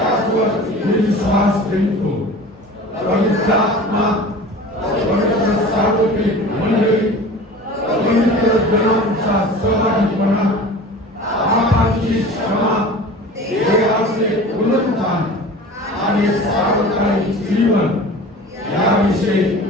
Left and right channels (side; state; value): both; normal; correlation 0.39